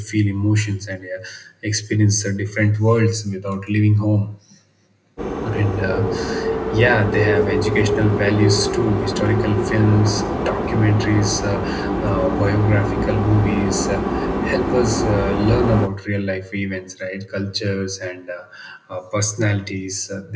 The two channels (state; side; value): identical; both; correlation 1.00